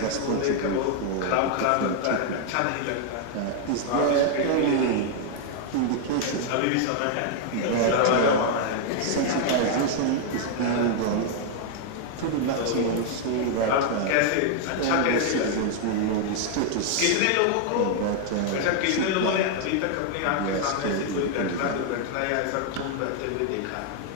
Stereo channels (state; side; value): different; both; correlation 0.00